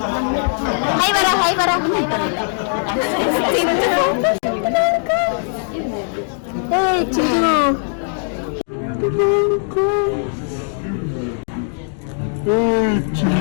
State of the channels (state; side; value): silent; right; 63 dB below the other